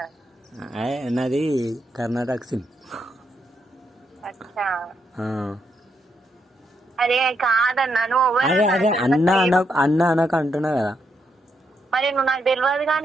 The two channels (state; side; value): normal; both; correlation 0.79